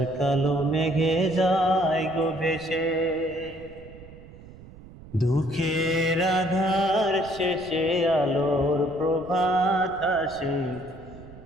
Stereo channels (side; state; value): right; noise; rumble, 19 dB below the sound